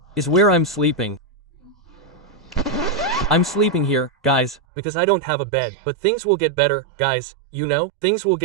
is where I'm sleeping. I'm sleeping here, guys, because I don't have a bed. But things will get better, guys, you know? Things will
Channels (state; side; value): drops out; left; at 4.6 s